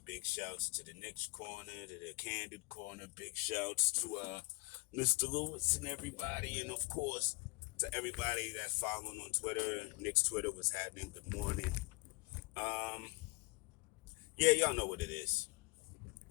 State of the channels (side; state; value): right; quieter; 26.2 dB